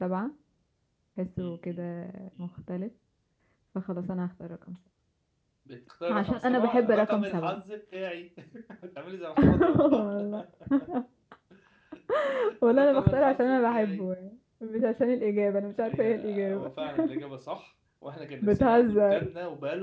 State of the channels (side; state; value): both; identical; correlation 1.00